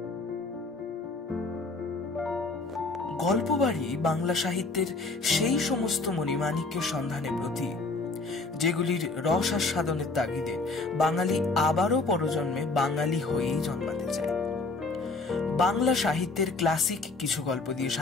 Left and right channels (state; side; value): quieter; right; 3.6 dB